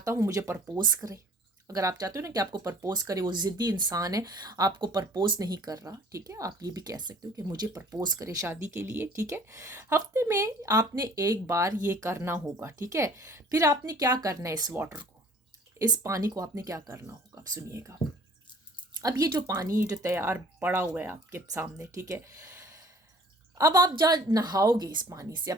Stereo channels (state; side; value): normal; both; correlation 0.52